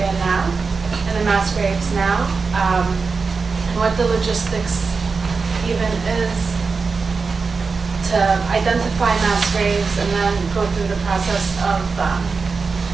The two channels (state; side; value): quieter; left; 4.7 dB